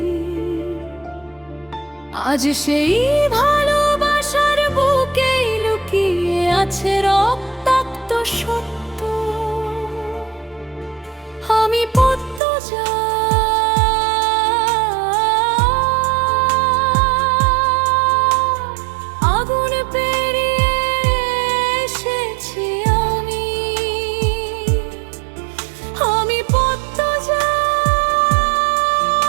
আজ সেই ভালোবাসার বুকেই লুকিয়ে আছে রক্তাক্ত সত্য। আমি পদ্মজা, আগুন পেরিয়ে এসেছি আমি। আমি পদ্মজা,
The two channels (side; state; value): left; drops out; at 12.4 s